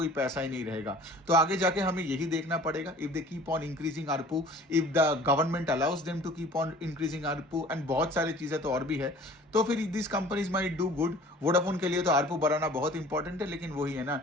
पैसा ही नहीं रहेगा। तो आगे जाके हमें यही देखना पड़ेगा, if they keep on increasing ARPU, if the government allows them to keep on increasing ARPU, and बहुत सारी चीजें तो और भी है, तो फिर this companies might do good. Vodafone के लिए तो आरपू बढ़ाना बहुत इंपॉर्टेंट है, लेकिन वही है ना,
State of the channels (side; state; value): both; normal; correlation 0.48